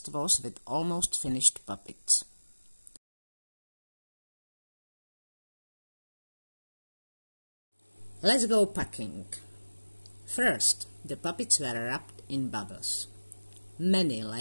was with almost finished puppets. Let's go packing. First, the puppets were wrapped in bubbles. Many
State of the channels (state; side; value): inverted; both; correlation -1.00